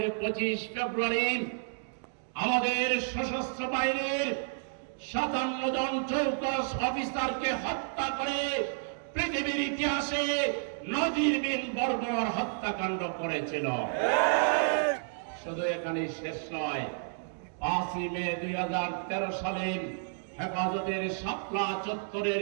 25 ফেব্রুয়ারি আমাদের সশস্ত্র বাহিনীর 57 জন চৌকস অফিসারকে হত্যা করে পৃথিবীর ইতিহাসে নজিরবিহীন বর্বর হত্যাকাণ্ড করেছিল। শুধু এখানেই শেষ নয়, 5 মে 2013 সালে হেফাজতের শাপলা চত্বরের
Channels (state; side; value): silent; left; digital silence